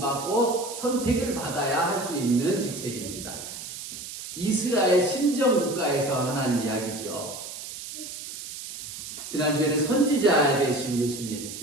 선택을 받아야 할 수 있는 직책입니다. 이스라엘 신정 국가에서 하는 이야기죠. 지난주에는 선지자 되신 예수님,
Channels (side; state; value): right; noise; hiss, 10 dB below the sound